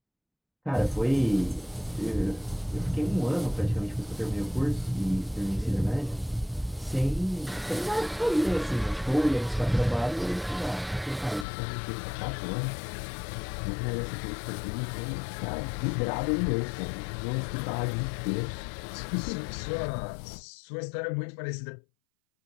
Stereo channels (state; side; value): drops out; right; at 11.5 s